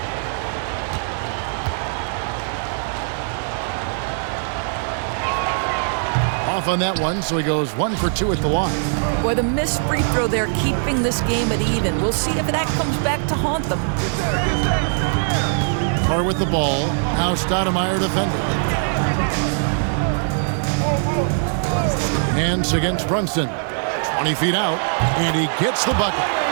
Off on that one, so he goes 1 for 2 at the line. Boy, the missed free throw there keeping this game at even. We'll see if that comes back to haunt them. Carr with the ball. Now Stoudemire defending. Hands against Brunson. 20 feet out, and he gets the bucket.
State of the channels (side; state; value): left; silent; 65 dB below the other